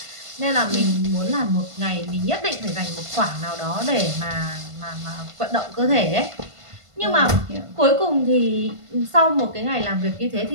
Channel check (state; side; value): late; left; 1.5 ms